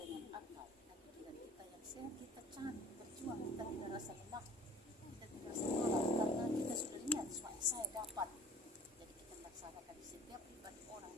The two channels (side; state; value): both; normal; correlation 0.49